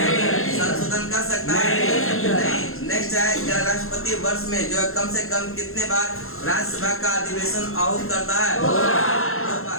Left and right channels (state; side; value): late; right; 0.61 ms